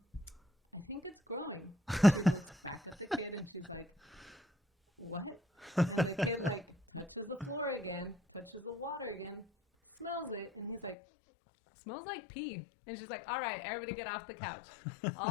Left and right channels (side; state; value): right; drops out; at 11.0 s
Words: "I think it's growing." She looks back at the kid and she's like, "What?" And the kid touches the floor again, touches the water again, smells it. And he's like, "Smells like pee." And she's like, "All right, everybody get off the couch."